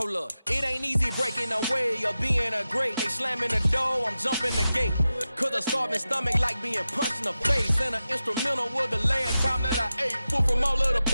up, it ain't easy breaking away or being a great. They slamming the door, I'm jumping the gate. Cause a starving stomach like being punched in the face. And an instrumental was the last time that I ate food from all of the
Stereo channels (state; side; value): inverted; both; correlation -0.93